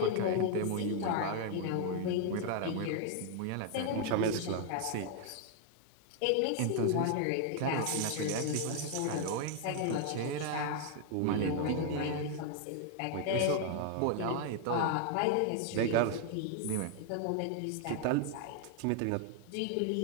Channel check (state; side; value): different; both; correlation 0.00